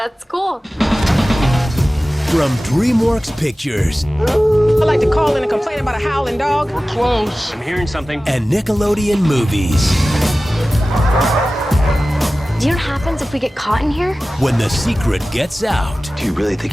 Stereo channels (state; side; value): normal; both; correlation 0.96